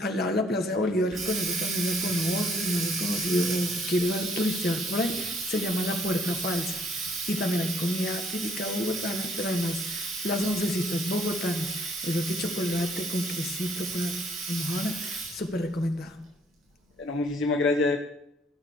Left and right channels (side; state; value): both; normal; correlation 0.64